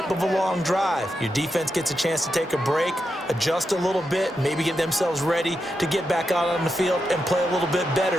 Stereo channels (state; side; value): normal; both; correlation 0.86